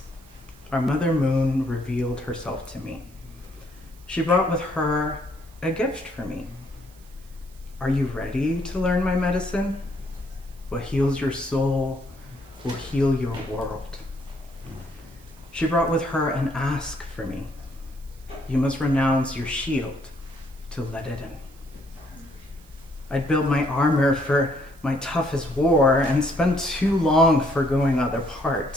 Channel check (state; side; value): noise; right; hiss, 27 dB below the sound